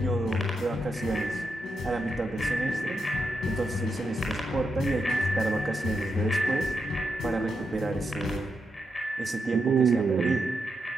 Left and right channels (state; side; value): normal; both; correlation 0.84